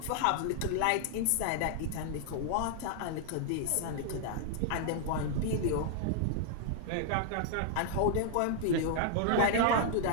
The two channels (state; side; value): different; both; correlation -0.01